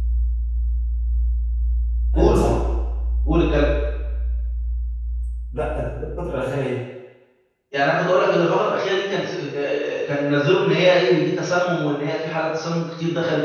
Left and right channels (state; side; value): identical; both; correlation 1.00